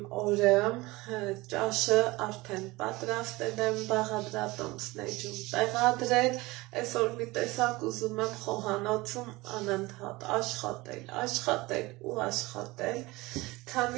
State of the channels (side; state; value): left; quieter; 21.3 dB